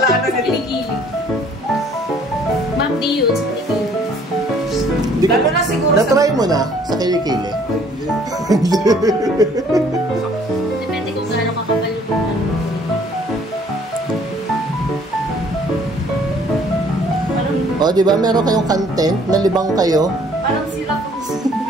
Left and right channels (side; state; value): both; normal; correlation 0.59